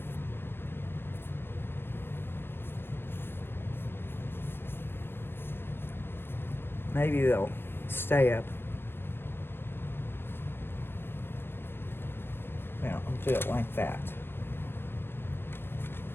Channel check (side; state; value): right; late; 0.10 ms